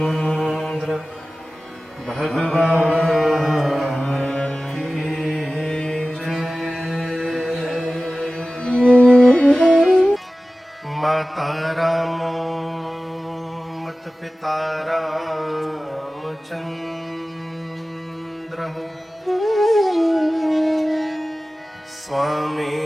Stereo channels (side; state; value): both; normal; correlation 0.96